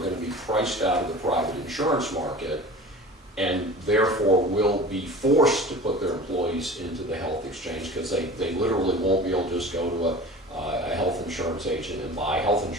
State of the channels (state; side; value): normal; both; correlation 0.38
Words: to be priced out of the private insurance market and therefore will be forced to put their employees into the health exchange because they literally won't be able to just go to a health insurance agent and buy health